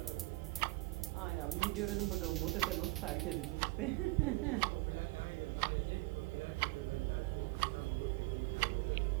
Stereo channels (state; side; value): quieter; left; 22.6 dB